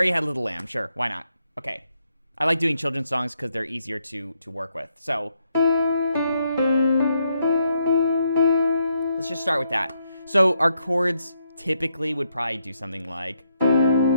Had a Little Lamb. Sure, why not? Okay. I like doing children's songs because they're easier to work with. So let's just start with that. So our chords typically would probably do something like...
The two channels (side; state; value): both; inverted; correlation -0.78